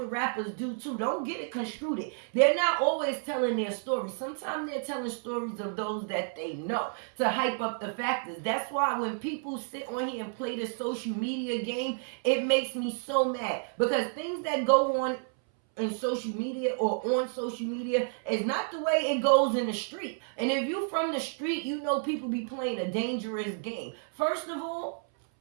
rappers do too. Don't get it construed. They're not always telling their story. Sometimes they're telling stories of those that they know to hype up the factors. That's why when people sit on here and play the social media game, it makes me so mad, because things that go on in social media or on social media is not the way it goes in the street. And if you from the street, people be playing a dangerous game. First of all,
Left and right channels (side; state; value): left; silent; 57 dB below the other